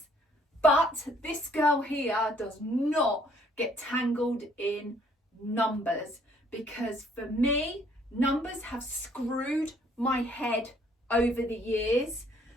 But this girl here does not get tangled in numbers, because for me, numbers have screwed my head over the years.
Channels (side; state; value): both; normal; correlation 0.63